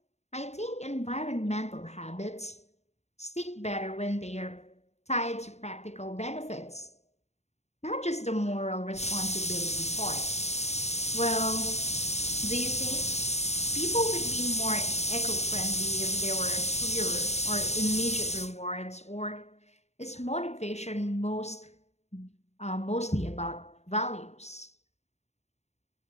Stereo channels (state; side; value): late; right; 0.32 ms